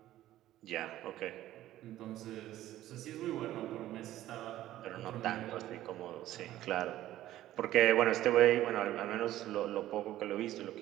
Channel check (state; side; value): quieter; left; 14.0 dB